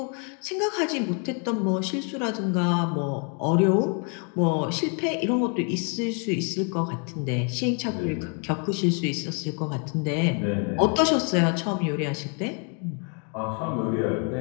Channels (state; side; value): quieter; right; 38.9 dB